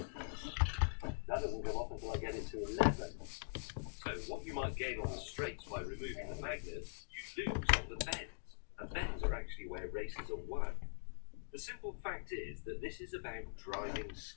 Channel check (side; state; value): right; silent; digital silence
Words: That doesn't come off until I get it to 11. So what you might gain on the straights by removing the magnets, you lose on the bends. And bends are actually where races are won. The simple fact is that this is about driving